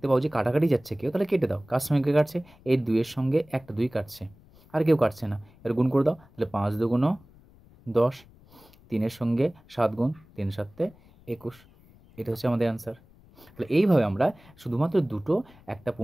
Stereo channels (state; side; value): noise; left; rumble, 26 dB below the sound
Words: পাও যে কাটাকাটি যাচ্ছে কেউ, তাহলে কেটে দাও। কার সঙ্গে কে কাটছে? এই 2-এর সঙ্গে একটা 2 কাটছে, আর কেউ কাটছে না, এর গুণ করে দাও। তাহলে 5 দুগুণ 10, 3-এর সঙ্গে 7 গুণ, 3 7 21। এটা হচ্ছে আমাদের অ্যান্সার। তাহলে এইভাবে আমরা শুধুমাত্র দুটো, একটা